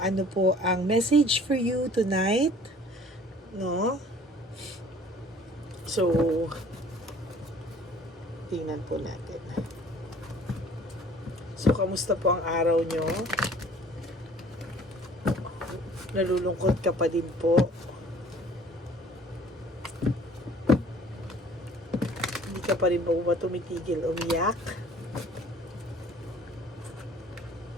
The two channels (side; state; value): both; normal; correlation 0.52